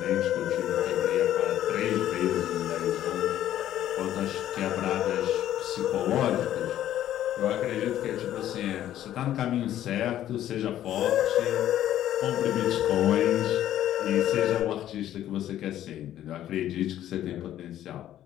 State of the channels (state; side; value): quieter; right; 12.1 dB